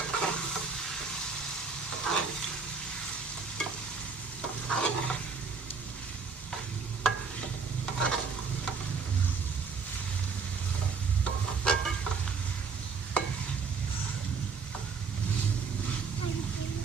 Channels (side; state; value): left; quieter; 5.2 dB